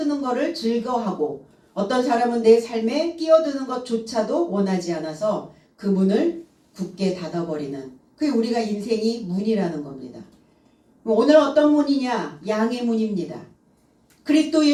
것을 즐거워하고 어떤 사람은 내 삶에 끼어드는 것조차도 원하지 않아서 그 문을 굳게 닫아버리는, 그게 우리가 인생이 문이라는 겁니다. 오늘 어떤 문이냐? 양의 문입니다. 그리스도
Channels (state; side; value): identical; both; correlation 1.00